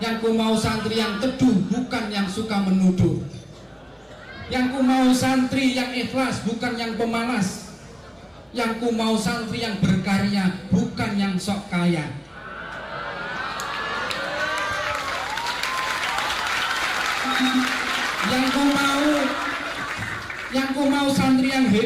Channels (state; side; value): identical; both; correlation 1.00